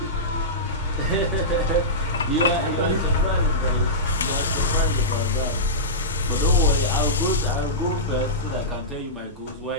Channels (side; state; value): both; normal; correlation -0.15